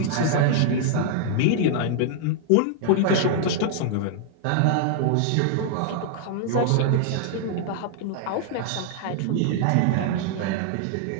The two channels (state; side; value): different; both; correlation 0.00